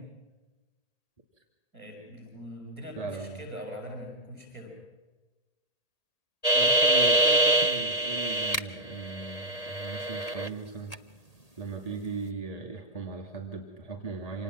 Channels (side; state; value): right; late; 1.8 ms